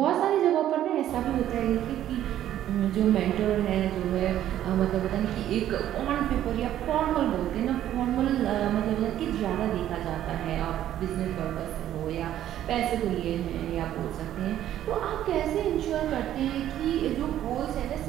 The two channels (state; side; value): quieter; left; 11.9 dB